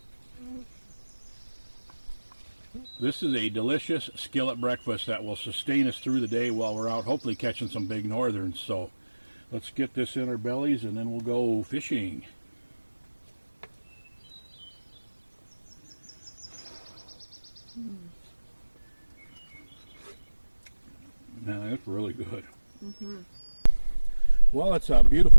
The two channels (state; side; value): inverted; both; correlation -1.00